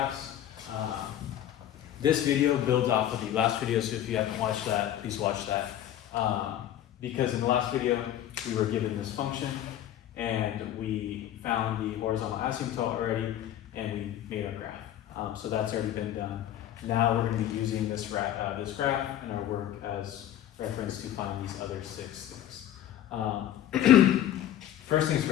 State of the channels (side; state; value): right; quieter; 11.7 dB